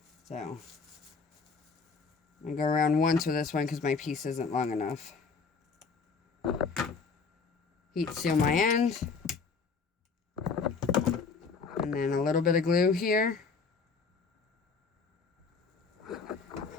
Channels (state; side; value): quieter; right; 5.0 dB